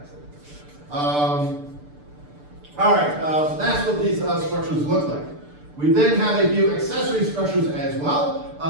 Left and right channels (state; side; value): late; left; 6.8 ms